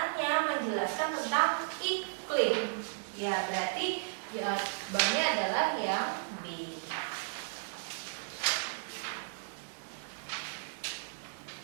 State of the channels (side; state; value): left; silent; digital silence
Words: menjelaskan tentang iklim. Ya berarti jawabannya adalah yang B.